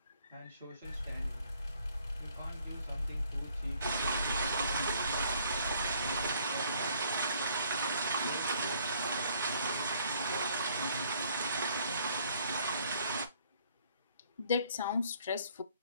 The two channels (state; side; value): inverted; both; correlation -0.62